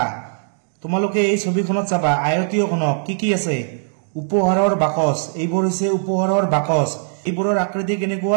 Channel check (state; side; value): silent; left; 66 dB below the other